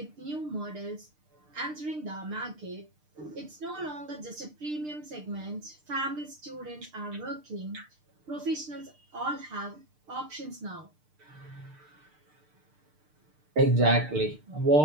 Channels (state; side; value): late; left; 6.6 ms